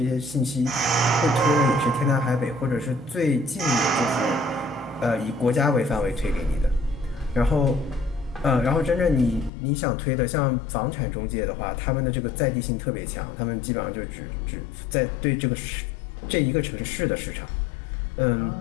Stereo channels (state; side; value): drops out; right; at 9.5 s